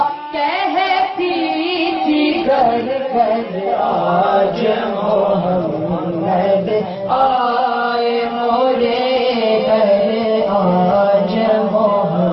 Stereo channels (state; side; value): identical; both; correlation 1.00